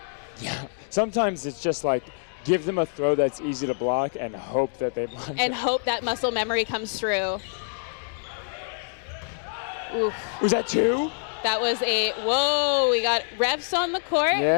Yeah, sometimes it's just like give them a throw that's easy to block and hope that they block. And hope that muscle memory comes through. Oof. Was that 2? That was whoa, we got refs on the court.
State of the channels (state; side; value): silent; right; 61 dB below the other